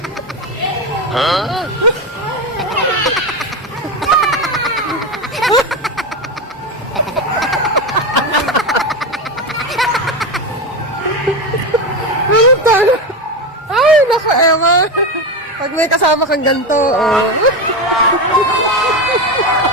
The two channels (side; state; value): both; normal; correlation 0.16